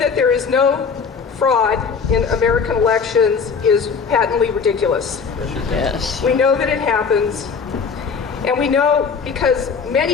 there is no fraud in American elections is patently ridiculous. Yes. We know that it happens, and we know because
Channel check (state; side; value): quieter; right; 5.6 dB